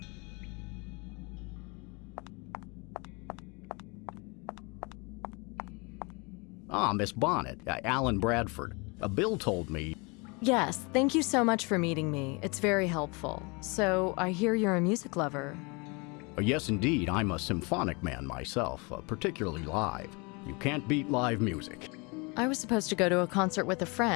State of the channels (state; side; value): quieter; right; 29.2 dB